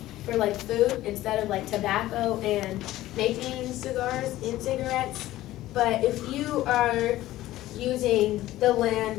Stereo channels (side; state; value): right; quieter; 15.5 dB